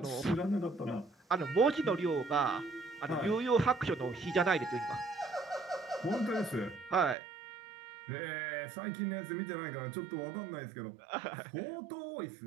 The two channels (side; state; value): left; drops out; at 7.2 s